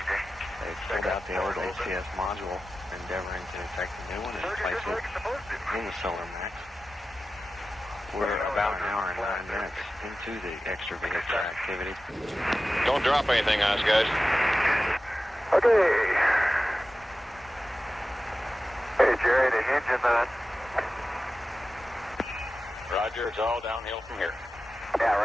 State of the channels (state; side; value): normal; both; correlation 0.94